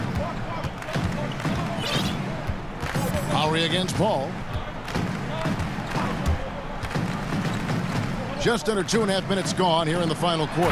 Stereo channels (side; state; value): both; identical; correlation 1.00